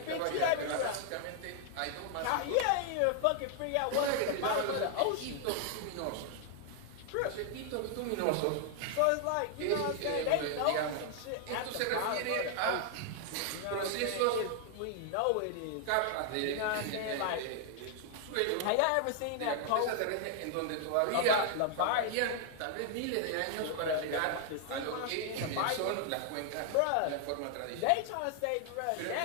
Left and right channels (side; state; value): both; different; correlation 0.00